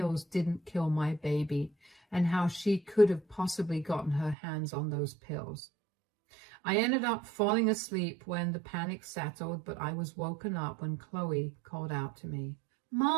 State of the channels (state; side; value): drops out; left; at 4.4 s